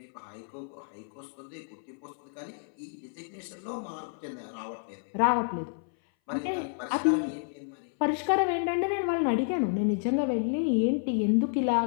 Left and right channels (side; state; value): right; silent; 58 dB below the other